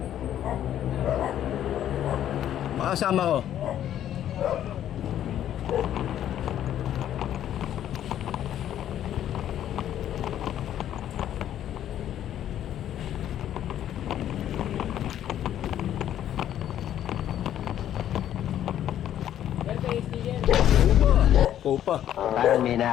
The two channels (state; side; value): quieter; right; 11.1 dB